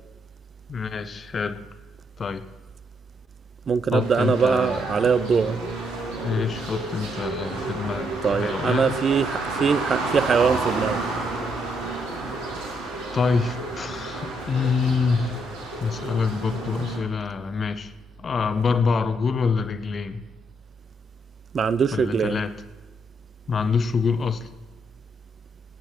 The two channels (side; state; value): both; normal; correlation 0.75